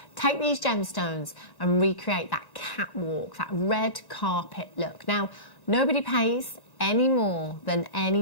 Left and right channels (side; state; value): right; late; 1.1 ms